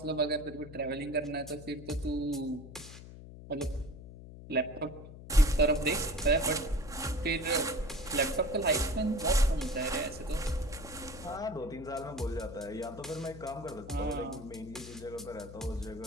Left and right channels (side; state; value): left; noise; hum, 14 dB below the sound